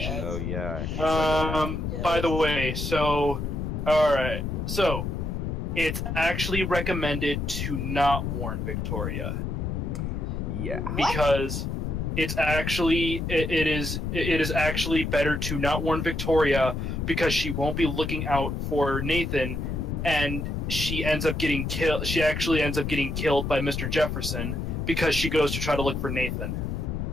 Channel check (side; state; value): left; noise; rumble, 3 dB below the sound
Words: Oh yeah. By the way, so alright, so it's actually recommended to not warn Victoria. Yeah. Because it's actually it is actually better to not warn Victoria because she won't be looking out for Nathan, and she ends up getting killed. She actually ends up getting killed by Mr. Jefferson because she goes to try to look for Nathan.